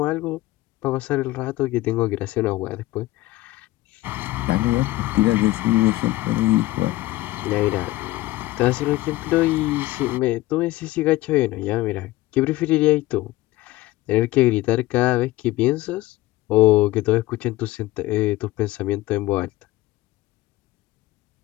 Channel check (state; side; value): quieter; right; 17.8 dB